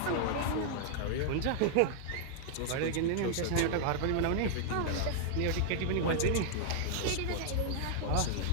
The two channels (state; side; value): different; both; correlation -0.01